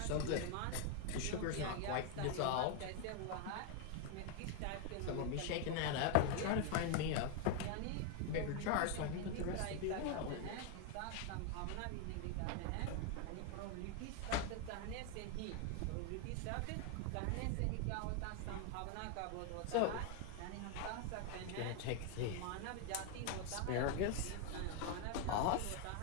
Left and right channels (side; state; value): both; different; correlation 0.01